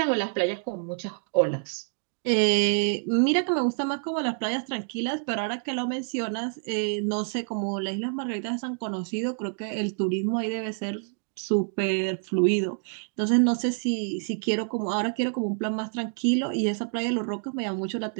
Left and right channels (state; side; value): silent; left; 57 dB below the other